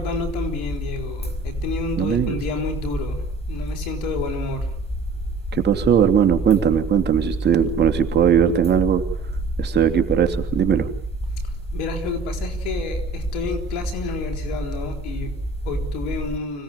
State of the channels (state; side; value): quieter; left; 4.6 dB